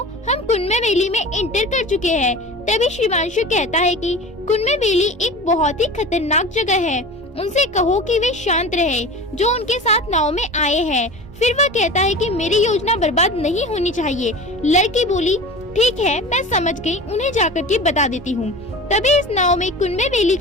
हम कुनमे वैली में इंटर कर चुके हैं। तभी श्रीमांशु कहता है कि कुनमे वैली एक बहुत ही खतरनाक जगह है, उनसे कहो कि वे शांत रहे जो उनके साथ नाव में आए हैं। फिर वह कहता है कि मेरी योजना बर्बाद नहीं होनी चाहिए। लड़की बोली ठीक है, मैं समझ गई, उन्हें जाकर के बता देती हूँ। तभी इस नाव में कुनमे वैली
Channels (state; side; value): normal; both; correlation 0.35